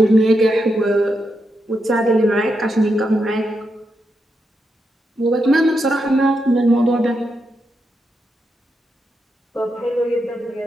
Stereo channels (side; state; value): both; normal; correlation 0.84